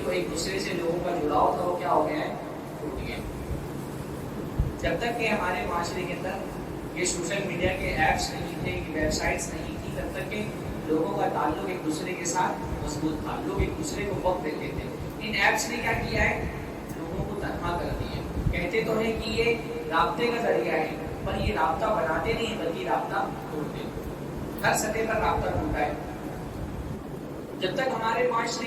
ایک دوسرے سے لوگوں کا جڑاؤ تھا وہ کیا ہو گیا ہے, ٹوٹ گیا. جب تک کہ ہمارے معاشرے کے اندر یہ سوشل میڈیا کے ایپس نہیں تھے, یہ ویب سائٹس نہیں تھی, تب تک کہ لوگوں کا تعلق ایک دوسرے کے ساتھ مضبوط تھا, لوگ ایک دوسرے کو وقت دیتے تھے. ان ایپس نے کیا کیا ہے, لوگوں کو تنہا کر دیا. کہتے تو ہیں کہ یہ رابطے کا ذریعہ ہے, پر یہ رابطہ بناتے نہیں بلکہ رابطہ توڑتے. ہر سطح پر رابطہ ٹوٹا ہے. جب تک ہمارے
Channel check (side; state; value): both; identical; correlation 1.00